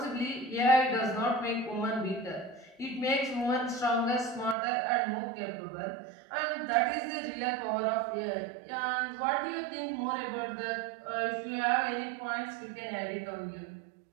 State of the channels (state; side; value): drops out; left; at 4.5 s